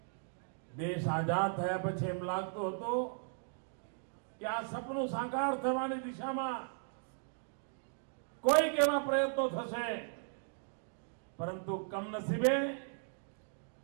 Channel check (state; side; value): silent; left; digital silence